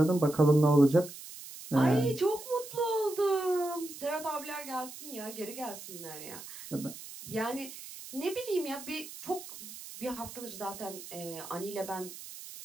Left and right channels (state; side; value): noise; right; hiss, 13 dB below the sound